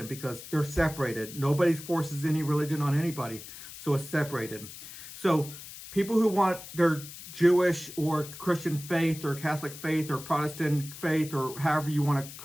because they're separated. Nobody forces any religion on anybody, so it's separated. So people who want their Jewish or Christian faith or Catholic faith or Protestant faith or however you want to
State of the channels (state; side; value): noise; left; hiss, 14 dB below the sound